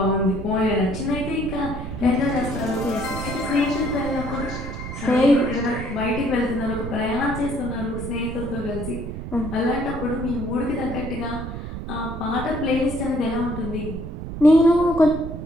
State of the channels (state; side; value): noise; right; rumble, 7 dB below the sound